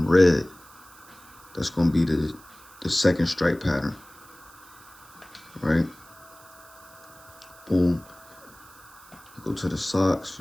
red. That's going to be the second stripe pattern, right? Boom. You go to the socks,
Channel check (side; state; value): right; noise; hiss, 23 dB below the sound